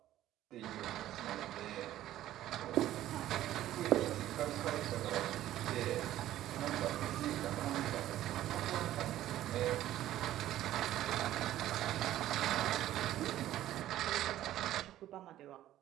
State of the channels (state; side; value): quieter; left; 13.4 dB